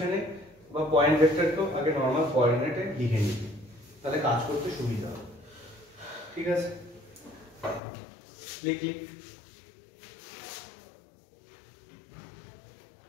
বা পয়েন্ট ভেক্টরকেও আগে নরমাল কোঅর্ডিনেটে লিখে নিবি, তাহলে কাজ করতে সুবিধা হবে। ঠিক আছে, লিখ।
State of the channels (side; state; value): right; drops out; at 7.8 s